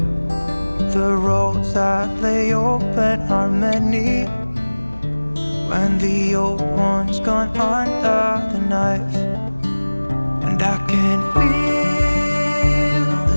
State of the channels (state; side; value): inverted; both; correlation -1.00